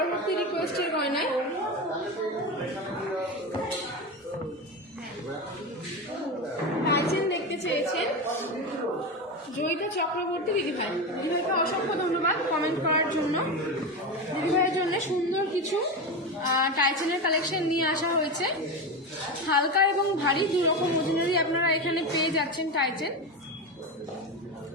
রিকোয়েস্টের গয়নায়। টাইচেন দেখতে চেয়েছেন জয়িতা চক্রবর্তী দিদিভাই। দিদিভাইকে অসংখ্য ধন্যবাদ কমেন্ট করার জন্য। দিদিভাইয়ের জন্য সুন্দর কিছু টাইচেনের কালেকশন নিয়ে আসা হয়েছে। হালকা এবং ভারী দু রকম ওজনেরই আপনারা এখানে পেয়ে যাচ্ছেন টাইচেন।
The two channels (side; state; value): both; normal; correlation 0.19